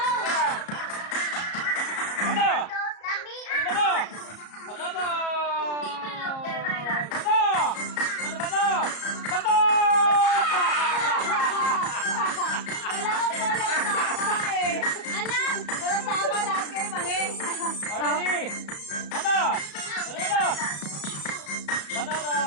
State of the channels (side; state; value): right; late; 34 ms